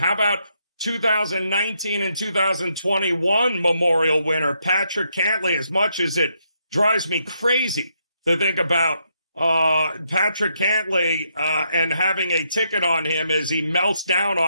about 2019 and 2021 Memorial winner Patrick Cantlay? As much as it drives me crazy to think about Patrick Cantlay and having a ticket on him as he melts down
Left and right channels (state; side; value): inverted; both; correlation -0.77